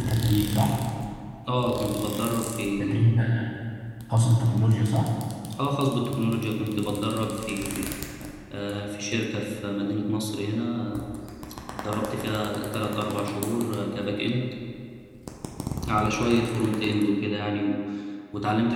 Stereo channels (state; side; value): identical; both; correlation 1.00